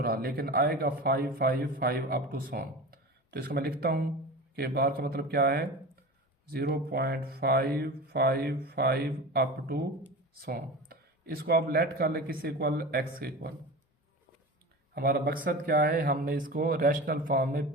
लेकिन आएगा 5 5 5 अप टू सॉन। तो इसका मैं लिखता हूँ कि बार का मतलब क्या है, 0.555 अप टू सो। इसको आप लेट कर ले किस इक्वल, एक्स के इक्वल। हमारा मकसद क्या है, हमने इसको रैशनल फॉर्म में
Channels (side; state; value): both; normal; correlation 0.31